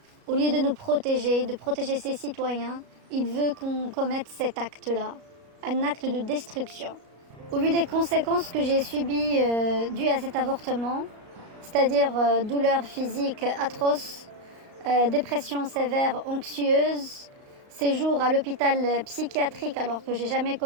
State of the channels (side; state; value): left; late; 35 ms